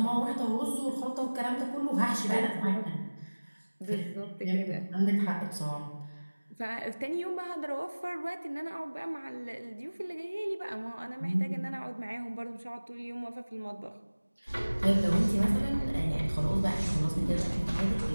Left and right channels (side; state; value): both; inverted; correlation -1.00